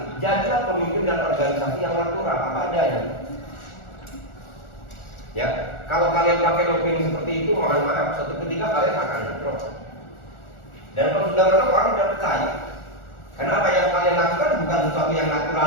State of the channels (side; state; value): right; late; 1.4 ms